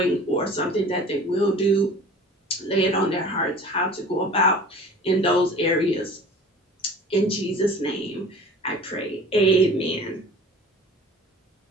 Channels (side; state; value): both; normal; correlation 0.43